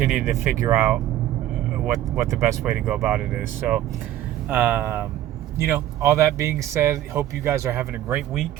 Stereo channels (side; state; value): left; quieter; 12.9 dB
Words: to figure out what the best way to go about it is. So all that being said, hope you guys are having a great